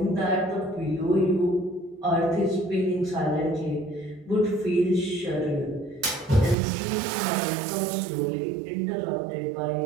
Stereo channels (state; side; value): drops out; left; at 6.6 s